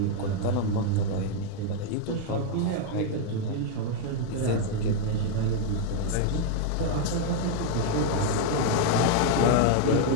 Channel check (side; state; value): both; different; correlation 0.00